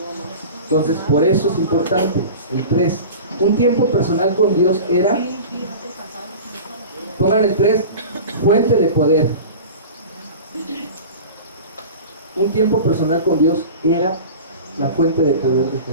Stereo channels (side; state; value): both; inverted; correlation -0.35